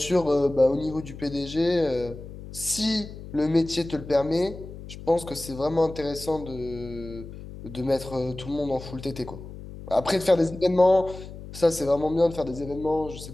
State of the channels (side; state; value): left; noise; hum, 13 dB below the sound